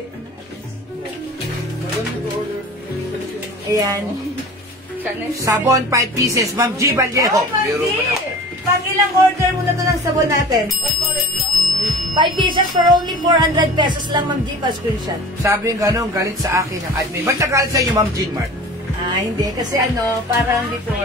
Ayan. Sabon, 5 pieces. Ma'am G. Vallejo. Ma'am G. Pang-ilang order muna to ng sabon natin? 5 pieces for only 400 pesos lang, Ma'am G. Pa-screenshot. Sabi yung gano'n, galit sa akin ang admin. Ba't nagalit sa inyo, Ma'am Jean Mark? Hindi. Kasi parang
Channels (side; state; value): both; normal; correlation 0.40